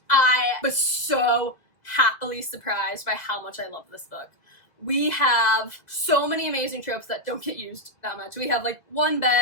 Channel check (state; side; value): late; right; 1.8 ms